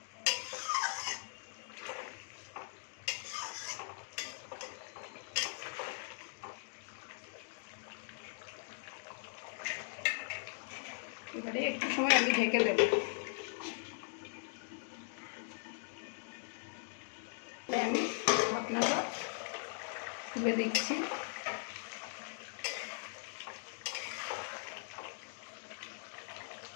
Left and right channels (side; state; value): right; silent; digital silence